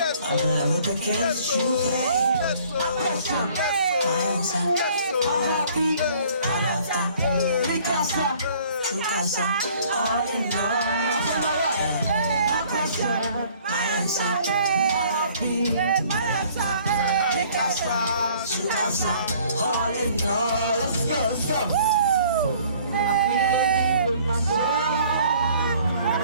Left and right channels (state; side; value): inverted; both; correlation -0.56